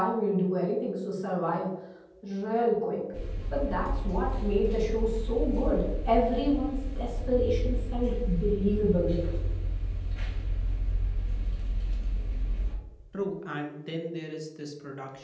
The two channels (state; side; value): identical; both; correlation 1.00